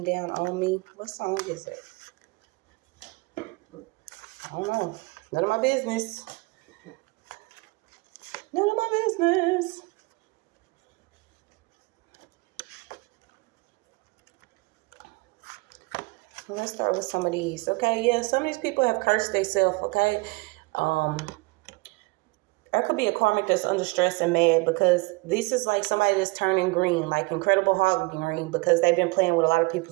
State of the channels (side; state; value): left; quieter; 26.6 dB